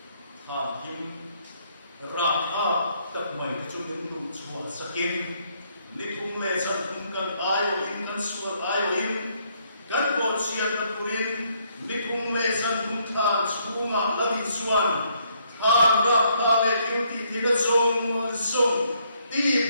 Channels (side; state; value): both; inverted; correlation -0.71